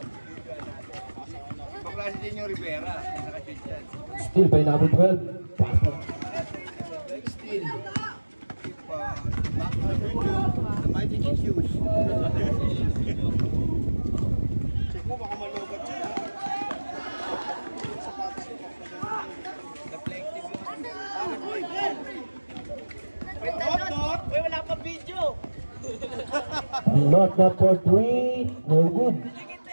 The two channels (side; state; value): both; inverted; correlation -1.00